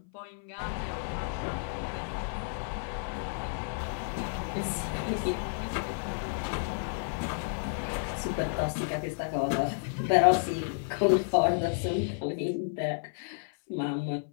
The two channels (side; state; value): right; silent; 57 dB below the other